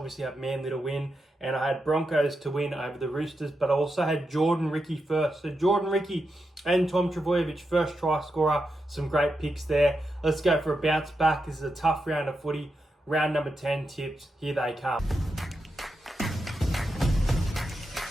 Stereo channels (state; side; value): normal; both; correlation 0.87